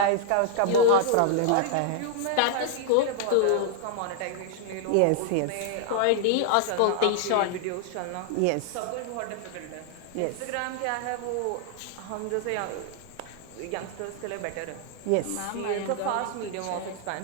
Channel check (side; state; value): both; different; correlation 0.00